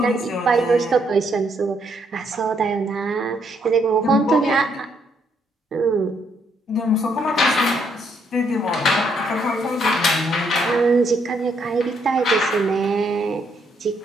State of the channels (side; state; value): both; normal; correlation 0.73